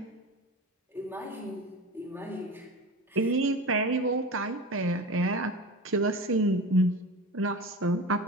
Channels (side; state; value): both; normal; correlation 0.30